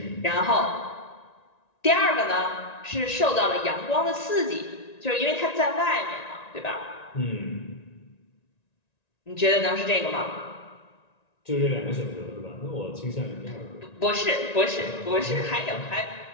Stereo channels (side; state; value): right; late; 1.9 ms